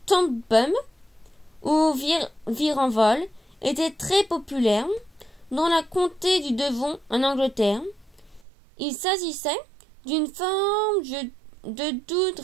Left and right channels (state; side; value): drops out; left; at 8.5 s